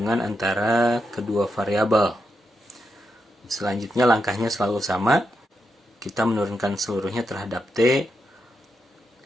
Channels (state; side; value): normal; both; correlation 0.84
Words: antara kedua variabel. Selanjutnya langkahnya selalu sama. Kita menurunkan seluruhnya terhadap t.